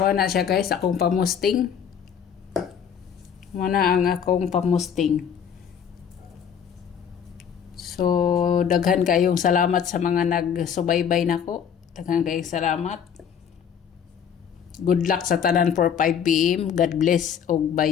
siya guys, akong pamusting. Muna ang akong pamusting. So, daghan kayong salamat sa mga nagsubaybay nako. Daghan kayong salamat. Good luck sa tanan for 5 PM. God bless og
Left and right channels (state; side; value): quieter; right; 7.9 dB